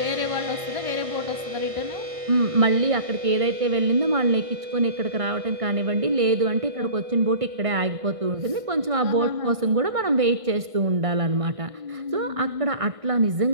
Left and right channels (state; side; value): late; left; 1.6 ms